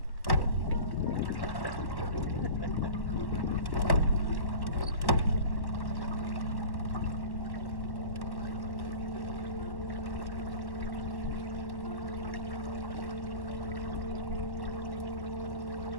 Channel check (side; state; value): right; late; 1.1 ms